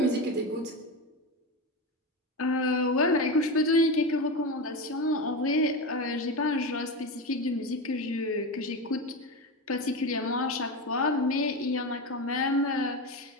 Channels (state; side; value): normal; both; correlation 0.19